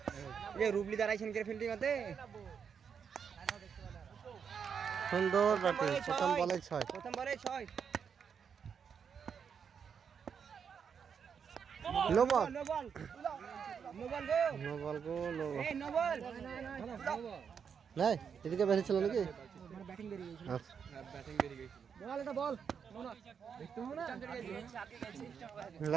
এই রুবলি দাঁড়াইছেন কে ফিল্ডিং হতে সুন্দর ব্যাটিং প্রথম বলে 6 প্রথম বলে 6 no ball no ball no ball go no ball go no ball এই নো বল নাই এদিকে বেরিয়ে ছিল নাকি মানে ব্যাটিং বেরিয়ে গেছিল আচ্ছা ব্যাটিং বেরিয়ে গেছিল বল এটা বল দেখতে হবে না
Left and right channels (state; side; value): quieter; left; 6.9 dB